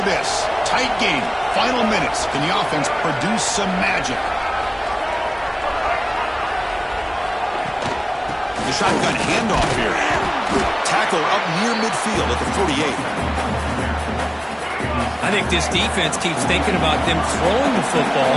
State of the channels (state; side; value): identical; both; correlation 1.00